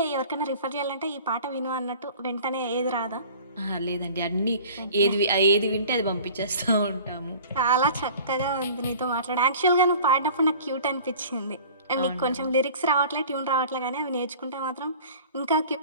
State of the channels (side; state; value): both; inverted; correlation -0.44